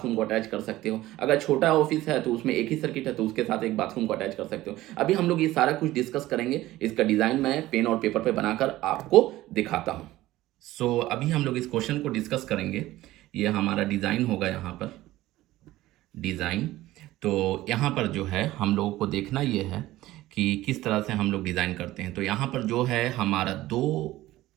को अटैच कर सकते हो। अगर छोटा ऑफिस है तो उसमें एक ही सर्किट है तो उसके साथ एक बाथरूम को अटैच कर सकते हो। अभी हम लोग ये सारा कुछ डिस्कस करेंगे। इसका डिज़ाइन मैं पेन और पेपर पे बनाकर आपको दिखाता हूँ। अभी हम लोग इस क्वेश्चन को डिस्कस करेंगे। ये हमारा डिज़ाइन होगा, यहाँ पर डिज़ाइन। तो यहाँ पर जो है हम लोगों को देखना ये है कि किस तरह से हम लोग डिज़ाइन करते हैं। तो यहाँ पर जो है हमारा दो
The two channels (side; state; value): left; quieter; 16.4 dB